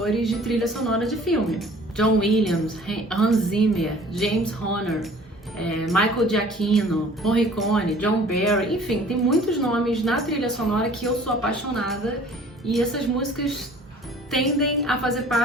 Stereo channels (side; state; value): both; normal; correlation 0.50